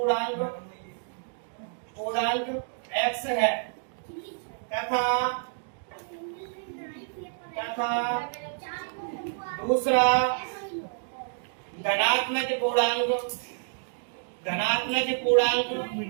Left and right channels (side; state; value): left; silent; digital silence